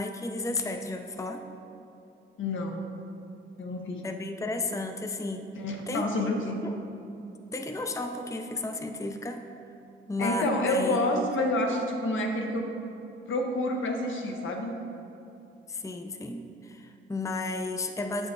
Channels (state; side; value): normal; both; correlation 0.36